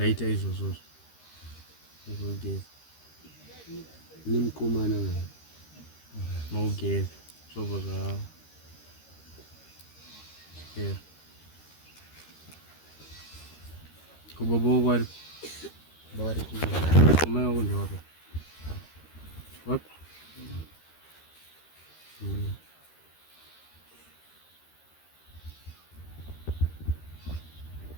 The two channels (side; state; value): right; late; 13 ms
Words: izvozvozvo izvogeza nemukomana maugeza zvobva zvapera kubaba wako ari vari amai wako ndewako wapi